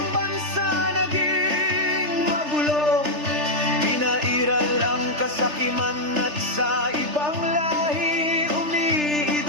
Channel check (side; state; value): left; late; 3.3 ms